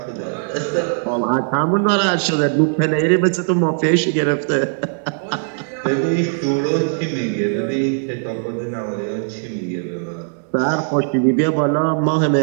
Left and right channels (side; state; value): left; silent; digital silence